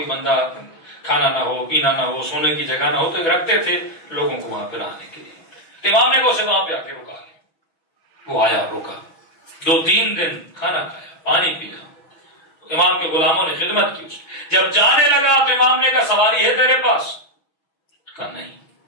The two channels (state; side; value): late; right; 6.1 ms